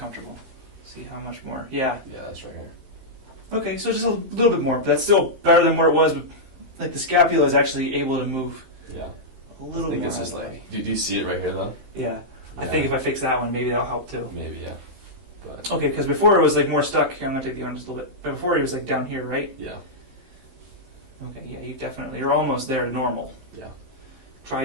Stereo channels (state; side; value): late; left; 15 ms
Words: See how much more. Yeah. Yeah, that's right here. Okay, so just a little bit more, but that's still better than where it was. But like the scapula is actually able to move Yeah. a little I think more. it's out just of the like. way. Do you see it right here though? Yeah. I Yeah. think if I fix that one, maybe that'll help too. Maybe, yeah. But Okay, because before it was like more stuck. Here, I'm gonna take the arm just a little bit. But before it was like down here, right? yeah. Okay, yeah, you're almost there to normal. Yeah. Try